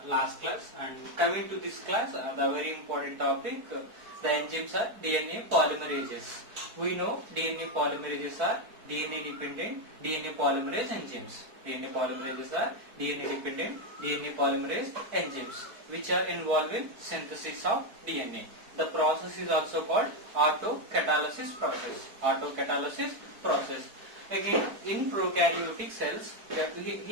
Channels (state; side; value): late; left; 4.6 ms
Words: last class. And coming to this class, the very important topic, the enzymes are DNA polymerases. We know DNA polymerases are DNA dependent DNA polymerase enzymes. DNA polymerases are DNA dependent DNA polymerase enzymes which are involved in synthesis of DNA. The process is also called autocatalysis process. Autocatalysis process. Again, in prokaryotic cells,